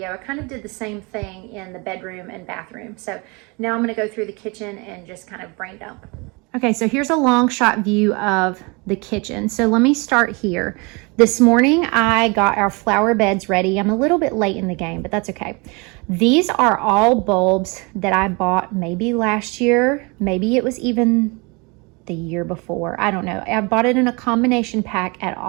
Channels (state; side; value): quieter; left; 28.8 dB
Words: I kind of did the same thing in the bedroom and bathroom. So now I'm gonna go through the kitchen and just kind of brain dump. Okay, so here's a long shot view of the kitchen. So let me start here. This morning, I got our flower beds ready. I'm a little bit late in the game, but that's okay. These are all bulbs that I bought maybe last year. Maybe it was even the year before. I don't know. I bought it in a combination pack at